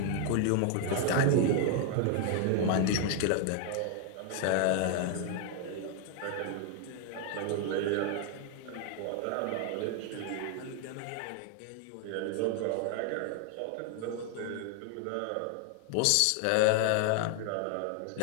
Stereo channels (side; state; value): both; different; correlation 0.00